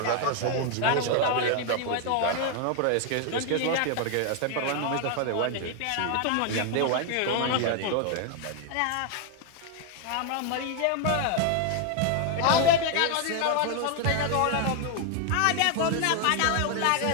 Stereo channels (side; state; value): both; different; correlation 0.01